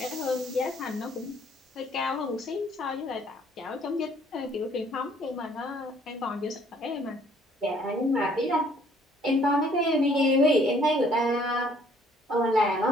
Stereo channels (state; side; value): normal; both; correlation 0.61